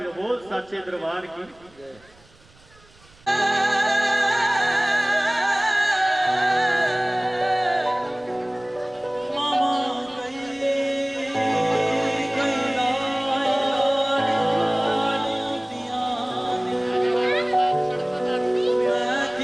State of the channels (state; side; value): noise; right; rumble, 28 dB below the sound